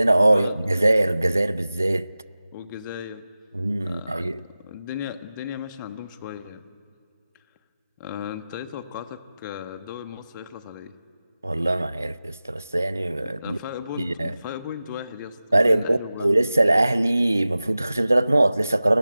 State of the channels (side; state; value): both; inverted; correlation -0.95